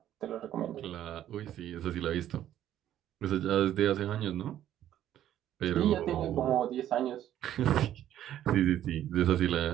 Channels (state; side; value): quieter; left; 11.7 dB